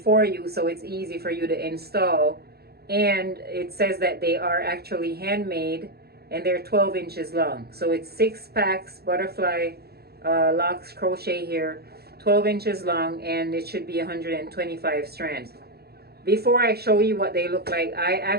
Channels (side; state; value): left; late; 0.46 ms